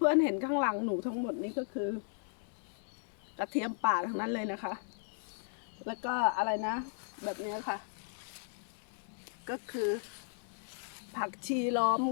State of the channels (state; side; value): silent; right; 54 dB below the other